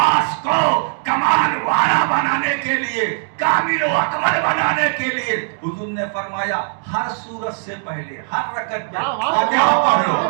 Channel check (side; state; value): left; silent; digital silence